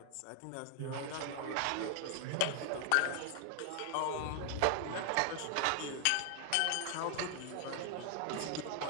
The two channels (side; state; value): both; different; correlation 0.00